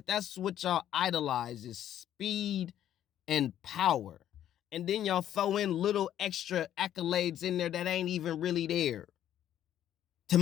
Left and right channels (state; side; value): quieter; right; 11.2 dB